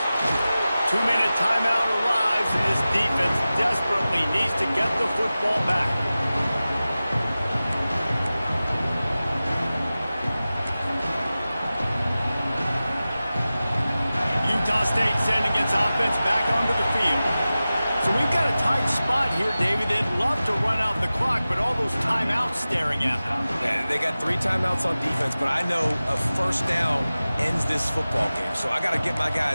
2-minute timeout arrives, and this defense desperately needs to get the football back. Utah State sending its offense back onto the field. So we've got a tight spot here, David. They'd love to run out the clock, but all those timeouts staring at them. Yeah, they got 3 timeouts on defense, but I know a first down ends this football game. So I got to get my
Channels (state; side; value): inverted; both; correlation -0.96